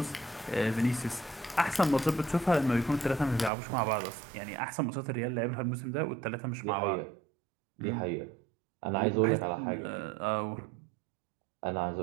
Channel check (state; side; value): drops out; left; at 3.5 s